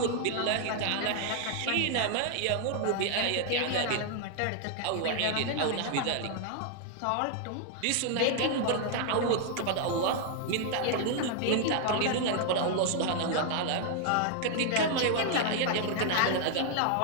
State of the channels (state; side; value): different; both; correlation 0.00